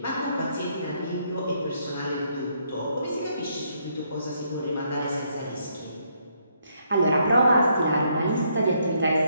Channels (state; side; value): inverted; both; correlation -0.73